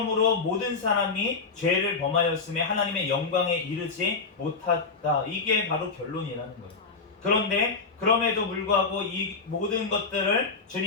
모든 사람이 죄를 범하였음에 하나님의 영광에 이르지 못했다, 이게 바로 결론이라는 거예요. 그런데 그럼에도 불구하고 이 모든 것들을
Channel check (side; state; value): right; quieter; 4.5 dB